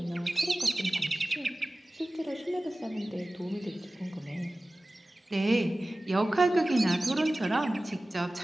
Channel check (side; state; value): both; normal; correlation 0.97